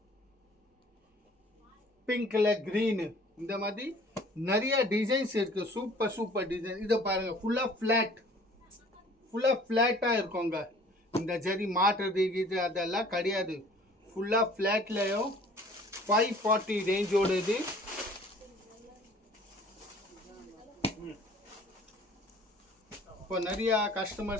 பிங்க்ல கிரீன், இந்த மாதிரி நிறைய டிசைன்ஸ் இருக்கு. Super super design. இதை பாருங்க, ஃபுல்லா ஃபிளாட்டா இருக்குங்க. இந்த ஜரி மாட்டுறது இது அதெல்லாம் கிடையாது. ஃபுல்லா ஃபிளாட்லயும் 540 ரேஞ்சோட இது. இப்போ நிறைய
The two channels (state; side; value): normal; both; correlation 0.52